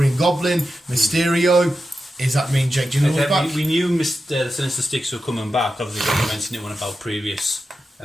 Goblin, Mysterio. Does that mean Jake Gyllenhaal's back? We knew the Sinister Six were coming back. Obviously, we mentioned it in one of our previous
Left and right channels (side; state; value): both; normal; correlation 0.90